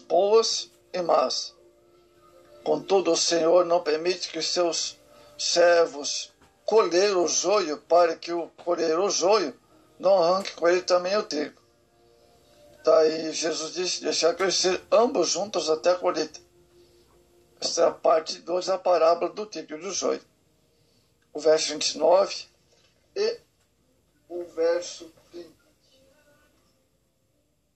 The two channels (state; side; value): identical; both; correlation 1.00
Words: e más. Contudo, o Senhor não permite que seus servos colher o joio, para que o colher o joio não arranque com ele também o trigo. Daí Jesus disse: deixar crescer ambos juntos até a colheita. Esta é a parte 2 da parábola do trigo e do joio. O verso 29 e o verso 30.